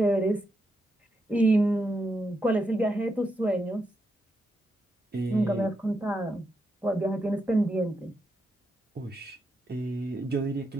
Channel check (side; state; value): both; normal; correlation 0.83